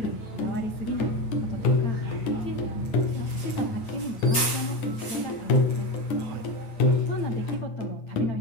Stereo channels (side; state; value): right; late; 8.1 ms